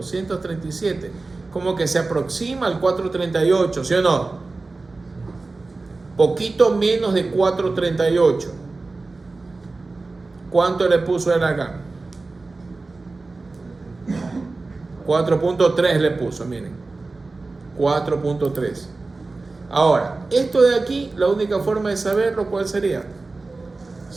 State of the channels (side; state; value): left; quieter; 3.5 dB